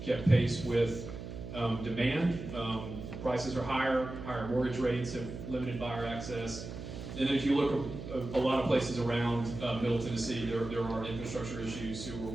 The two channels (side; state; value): right; noise; hum, 9 dB below the sound